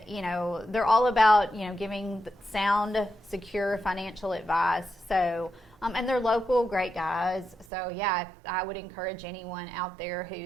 they're all about, giving sound, secure financial advice. So, and they're local, great guys. So yeah, I would encourage anyone out there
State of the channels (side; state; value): left; drops out; at 7.7 s